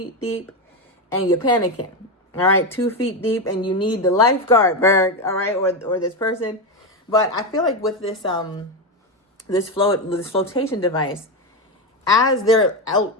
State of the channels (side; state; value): both; normal; correlation 0.11